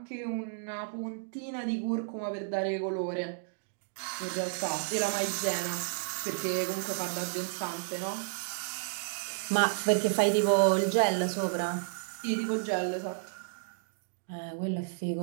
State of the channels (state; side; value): silent; left; digital silence